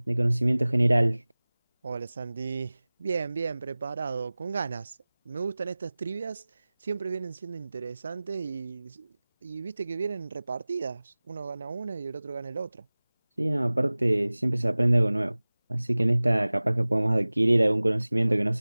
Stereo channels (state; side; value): inverted; both; correlation -0.99